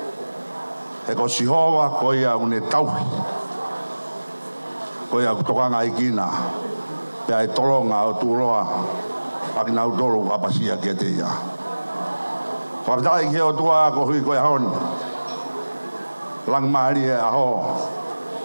E ko sihova ko ia une tauhi. Ko ia kutokanga i kina. Pea e tolonga o turoa, aki nau tolo kapasia kia te ia. Whakatai ki o tua ko hui koe hon. Lang mahari e aho.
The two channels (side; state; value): both; inverted; correlation -1.00